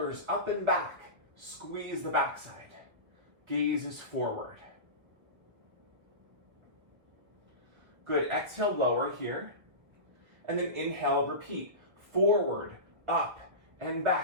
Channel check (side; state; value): left; late; 1.5 ms